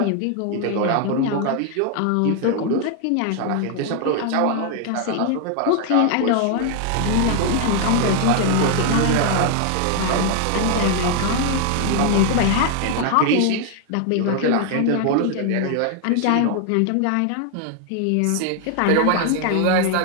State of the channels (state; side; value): different; both; correlation 0.00